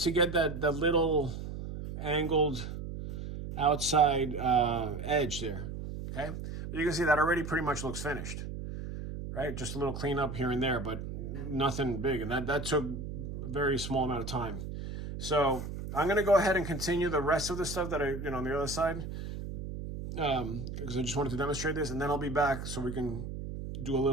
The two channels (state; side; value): noise; right; hum, 7 dB below the sound